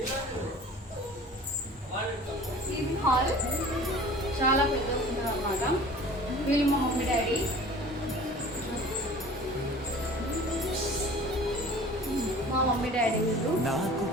ఇది హాల్ చాలా పెద్దగా ఉంటుంది అన్నమాట. వీళ్ళు మా మమ్మీ డాడీ. మా మమ్మీ డాడీ వీళ్ళు.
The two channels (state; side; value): normal; both; correlation 0.44